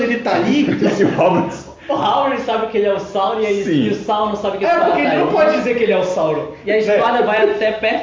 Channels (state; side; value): identical; both; correlation 1.00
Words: tá ali, Esse Halbrand... O Howard sabe que ele é o Sauron Sim. e o Sauron sabe que a espada porque tá ele não aí. pode dizer que ele é o Sauron. E a espada vai até